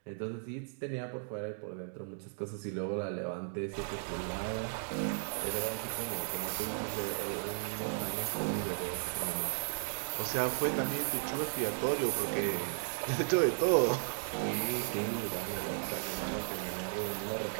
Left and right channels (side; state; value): left; silent; digital silence